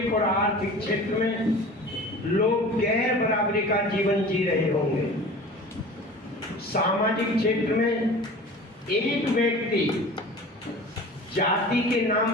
और आर्थिक क्षेत्र में लोग गैर बराबरी का जीवन जी रहे होंगे। सामाजिक क्षेत्र में एक व्यक्ति जाति के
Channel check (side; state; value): both; normal; correlation 0.39